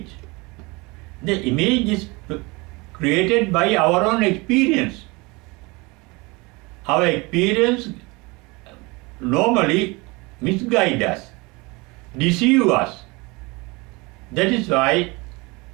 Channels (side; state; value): left; quieter; 25.5 dB